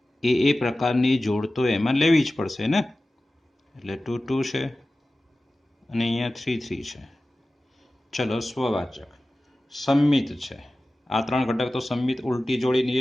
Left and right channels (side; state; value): both; normal; correlation 0.96